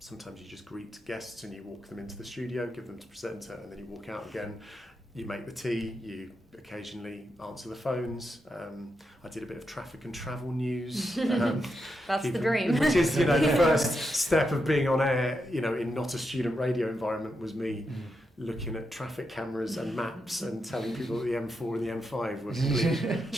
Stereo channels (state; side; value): normal; both; correlation 0.85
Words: you just greet guests and you walk them into the studio, give them to presenter, and then you walk out again. You make the tea, you occasionally answer the phones. I did a bit of traffic and travel news. That's the dream. Which is, the first step of being on air, in not a student radio environment, was me looking at traffic cameras and maps and telling people that the M4 and the M5 were complete